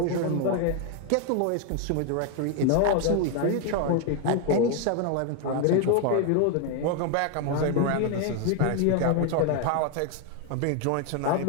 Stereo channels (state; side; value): different; both; correlation 0.01